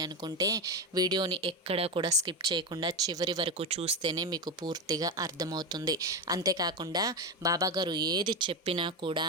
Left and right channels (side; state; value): both; normal; correlation 0.15